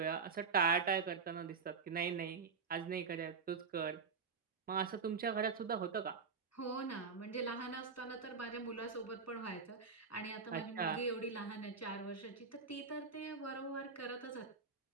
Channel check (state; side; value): quieter; left; 5.2 dB